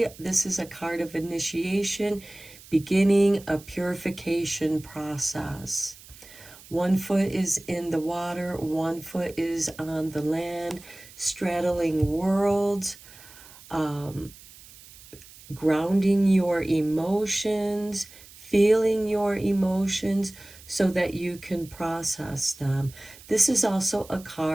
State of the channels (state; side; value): noise; right; hiss, 20 dB below the sound